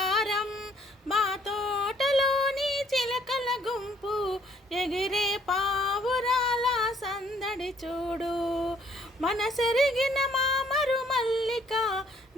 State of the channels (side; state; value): both; normal; correlation 0.63